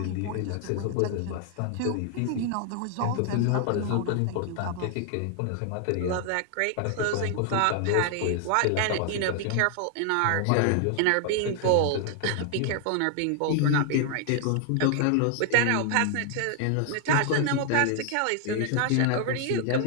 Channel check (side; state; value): both; different; correlation 0.00